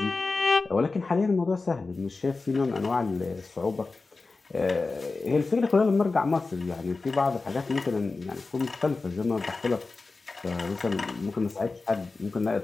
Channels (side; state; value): right; quieter; 3.8 dB